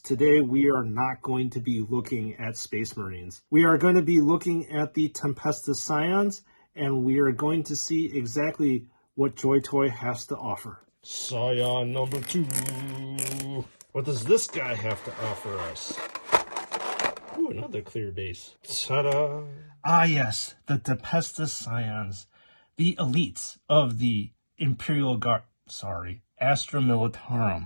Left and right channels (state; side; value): inverted; both; correlation -1.00